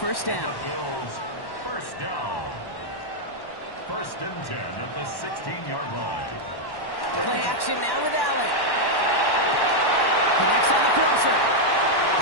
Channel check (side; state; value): right; late; 1.1 ms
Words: down. First down. 1st and 10 at the 16-yard line. Play action now with Allen. Connects on the crosser.